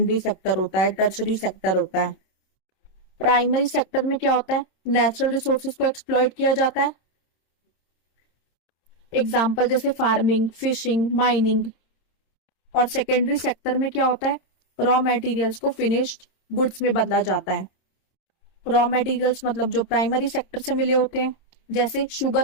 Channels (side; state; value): right; late; 26 ms